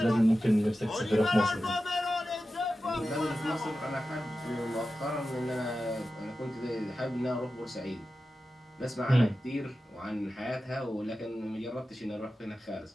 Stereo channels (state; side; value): normal; both; correlation 0.93